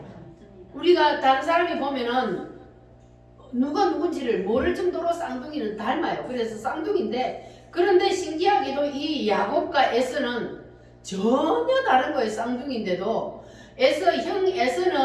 우리가 다른 사람이 보면은 누가 누군지를 모를 정도로 쌍둥이는 닮아요. 그래서 쌍둥이인데, 그런데 신기하게도 이 야곱과 에서는 전혀 다른 거예요. 쌍둥이인데도 형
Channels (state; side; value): identical; both; correlation 1.00